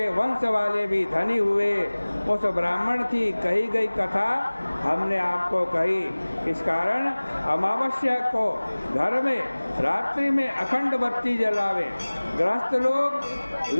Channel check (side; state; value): both; inverted; correlation -1.00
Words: वंश वाले भी धनी हुए। उस ब्राह्मण की कही गई कथा हमने आपको कही। इस कारण अमावस्या को घर में रात्रि में अखंड बत्ती जलावे। गृहस्थ लोग